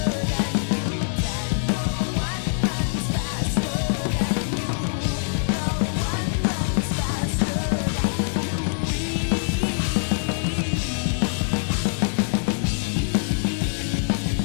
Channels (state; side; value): silent; right; digital silence